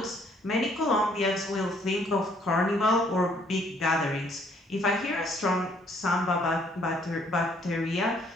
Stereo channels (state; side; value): normal; both; correlation 0.65